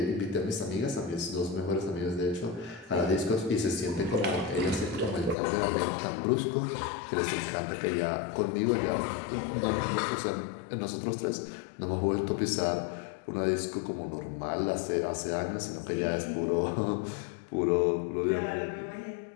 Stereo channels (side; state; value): right; drops out; at 5.4 s